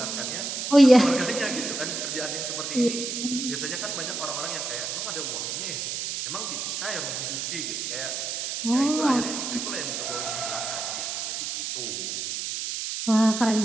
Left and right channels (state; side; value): noise; right; hiss, 3 dB below the sound